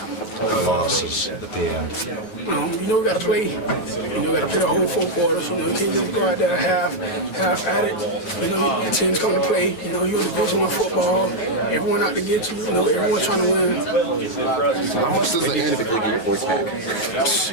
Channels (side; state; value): right; late; 8.9 ms